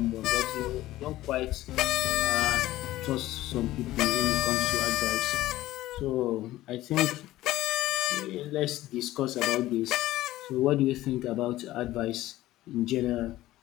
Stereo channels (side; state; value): right; quieter; 15.8 dB